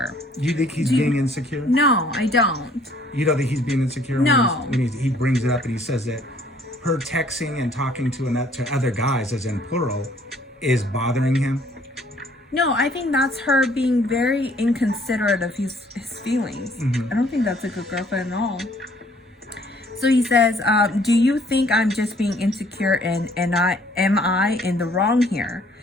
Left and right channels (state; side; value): normal; both; correlation 0.60